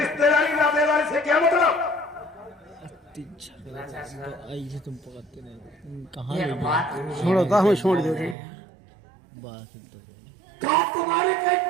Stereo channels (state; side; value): drops out; left; at 8.3 s